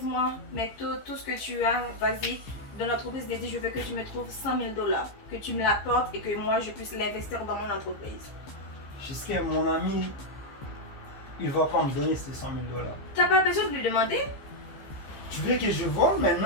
mais tout ce que tu as, vas-y. Dans l'entreprise d'Eddie, je veux que tu me trouves 100 000 $. Que tu me l'apportes et que moi, je puisse l'investir dans mon entreprise. Jusqu'à mon ami, il va pas me donner ces 100 000 $. T'as pas besoin de lui demander? Tu veux que je vole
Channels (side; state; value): right; late; 15 ms